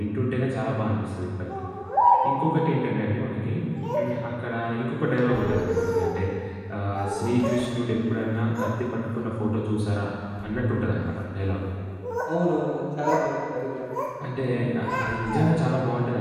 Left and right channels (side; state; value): both; identical; correlation 1.00